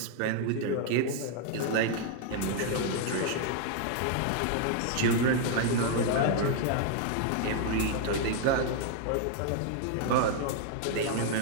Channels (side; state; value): both; different; correlation 0.00